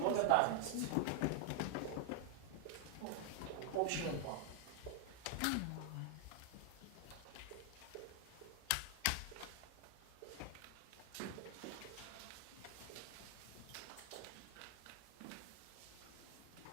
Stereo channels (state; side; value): different; both; correlation 0.00